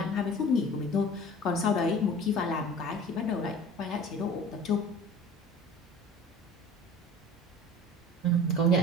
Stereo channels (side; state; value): both; normal; correlation 0.42